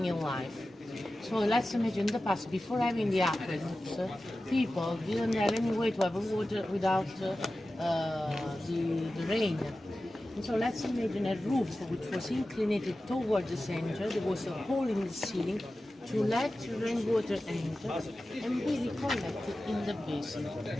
in life. So let's imagine in the past, before having the aqueducts, people didn't have any way to have water without the rain. And so let's imagine a roof which was inclinated toward the center. There was a hole in the ceiling to let rainwater enter and be recollected in the basin.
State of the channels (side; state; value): both; normal; correlation 0.94